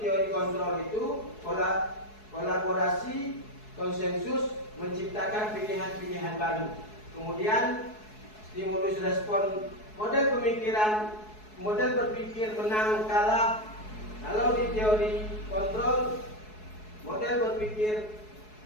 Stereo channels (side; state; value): right; late; 4.7 ms